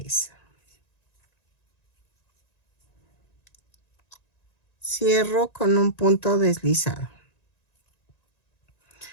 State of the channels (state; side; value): late; right; 1.9 ms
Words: Cierro con un punto deslizado.